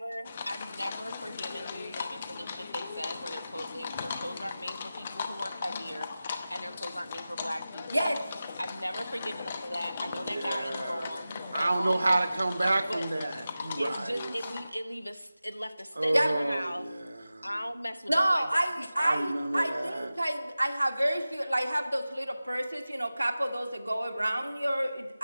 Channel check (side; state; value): both; inverted; correlation -0.95